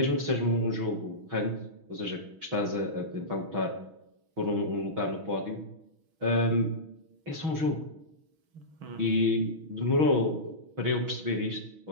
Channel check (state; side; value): late; left; 6.3 ms